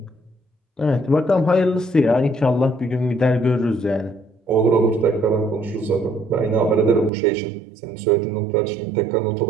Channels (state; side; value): drops out; left; at 7.1 s